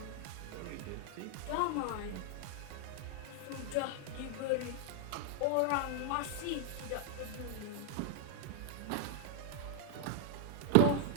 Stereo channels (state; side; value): different; both; correlation 0.00